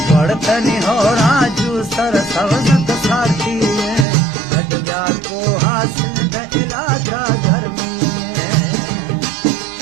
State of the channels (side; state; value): left; drops out; at 4.0 s